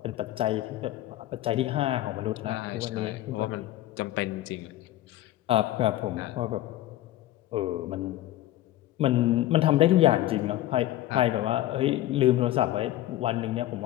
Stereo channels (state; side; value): quieter; right; 14.7 dB